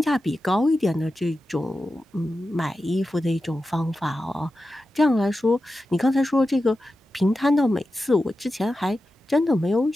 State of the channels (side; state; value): both; normal; correlation 0.92